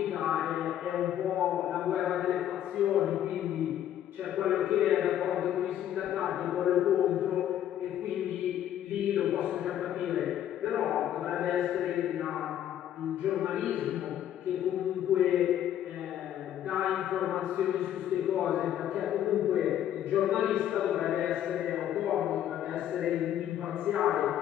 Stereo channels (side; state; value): right; quieter; 11.1 dB